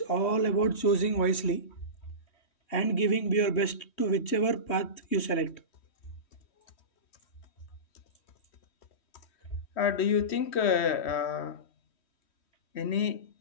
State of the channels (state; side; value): late; right; 3.1 ms